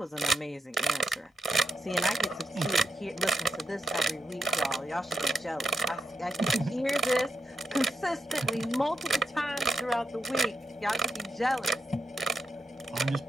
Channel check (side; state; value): both; normal; correlation 0.83